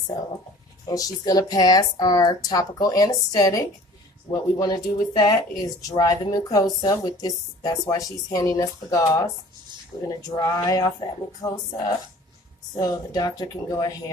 and she's going to pass our topical anesthetic. What we want to do with that is dry the mucosa with this. That's why she's handing us the gauze. We're going to dry off that mucosa so the doctor can go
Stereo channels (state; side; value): normal; both; correlation 0.47